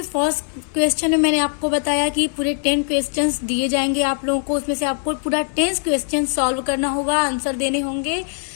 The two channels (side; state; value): right; silent; 56 dB below the other